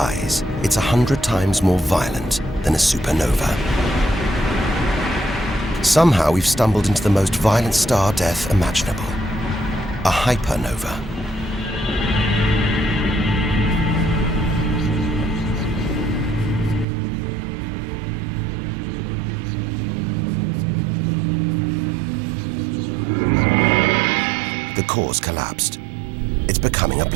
it's 100 times more violent than a supernova. Somehow we've stumbled into the most violent star death imaginable. A hypernova. The core's collapsed. It's becoming a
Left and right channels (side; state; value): left; drops out; at 16.9 s